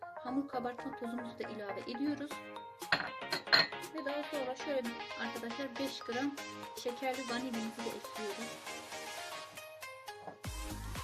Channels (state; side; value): identical; both; correlation 1.00